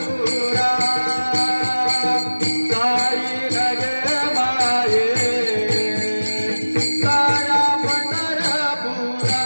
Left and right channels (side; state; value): both; inverted; correlation -1.00